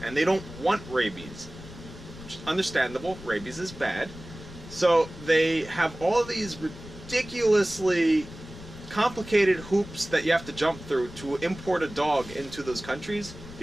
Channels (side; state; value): left; noise; rumble, 15 dB below the sound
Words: and they don't want rabies. Which is understandable. Rabies is bad. So they have all of these ridiculously complicated hoops that you have to jump through to import a dog into those countries,